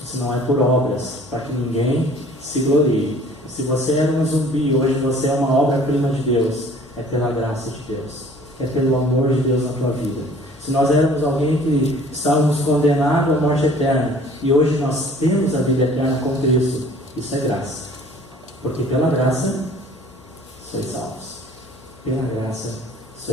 Isso não é por obras, para que ninguém se glorie. Se você era um zumbi, hoje você é uma obra-prima de Deus. é pela graça de Deus, é pelo amor de Deus na tua vida. Se nós éramos alguém que estávamos condenados à morte eterna, e hoje nós temos a vida eterna com Cristo, isso é graça. Porque pela graça, sois salvos. Pela graça,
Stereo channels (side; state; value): left; noise; hum, 24 dB below the sound